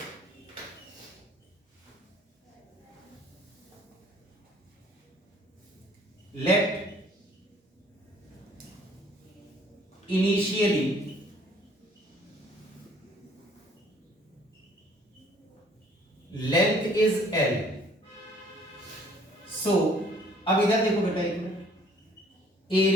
Let initially length is L। So अब इधर देखो बेटा एक मिनट,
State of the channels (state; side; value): normal; both; correlation 0.58